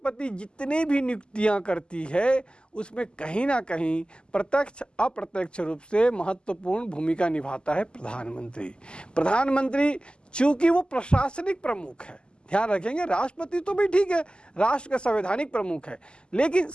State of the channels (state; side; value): late; right; 0.049 ms